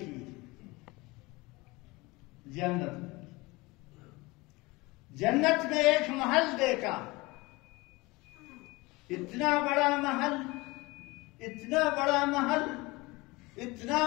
جنت میں ایک محل دیکھا، اتنا بڑا محل، اتنا بڑا محل، اتنا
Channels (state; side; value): quieter; right; 23.1 dB